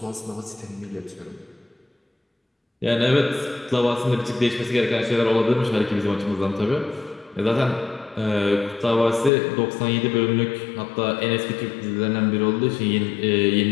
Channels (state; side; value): drops out; right; at 9.3 s